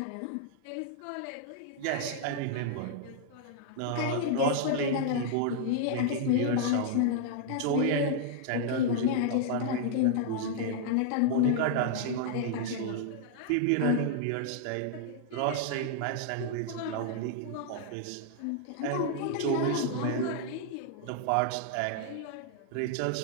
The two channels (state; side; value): different; both; correlation -0.01